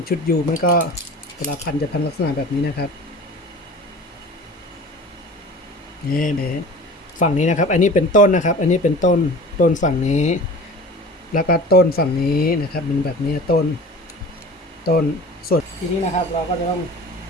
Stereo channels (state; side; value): normal; both; correlation 0.40